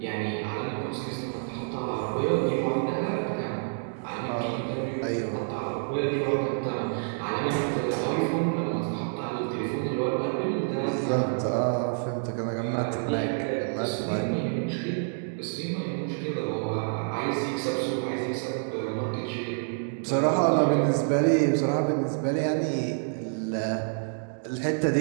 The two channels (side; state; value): left; silent; digital silence